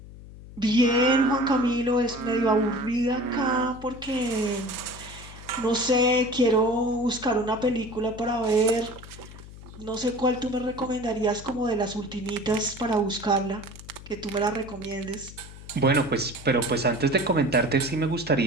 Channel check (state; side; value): noise; left; hum, 16 dB below the sound